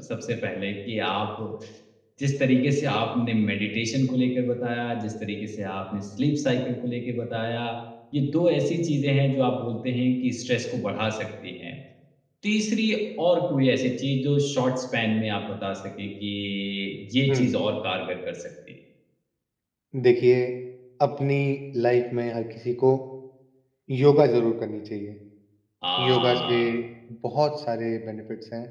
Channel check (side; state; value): both; identical; correlation 1.00